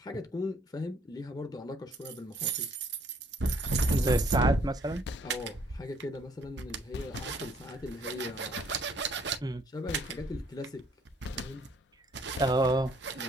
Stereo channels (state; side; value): normal; both; correlation 0.63